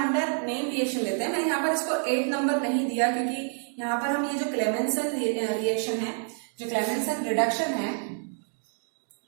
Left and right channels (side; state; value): left; silent; digital silence